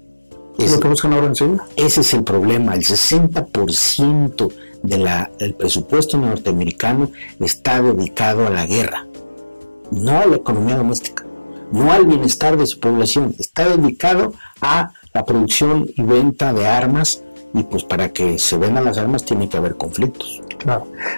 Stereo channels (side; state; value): both; inverted; correlation -1.00